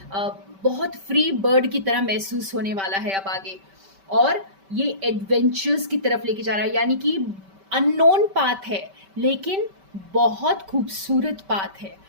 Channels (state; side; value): late; left; 5.2 ms